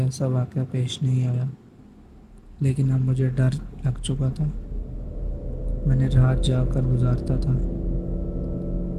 ایسا واقعہ پیش نہیں آیا، لیکن اب مجھے ڈر لگ چکا تھا۔ میں نے رات جا کر گزارتا تھا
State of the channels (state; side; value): identical; both; correlation 1.00